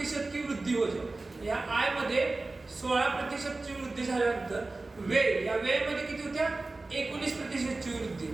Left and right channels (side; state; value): left; quieter; 3.3 dB